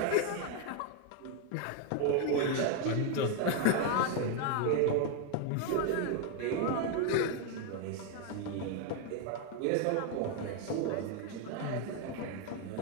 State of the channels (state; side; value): different; both; correlation 0.00